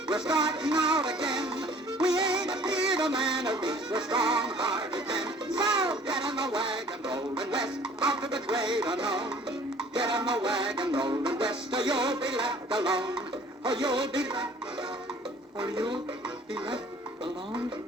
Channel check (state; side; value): normal; both; correlation 0.52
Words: we're starting out again. We ain't afeard of man, at least we're strong-hearted men. So get in the wagon, rolling west, out to the great unknown. Get in the wagon, rolling west, or you'll be left alone. Or you'll be left alone. Or you'll be left alone.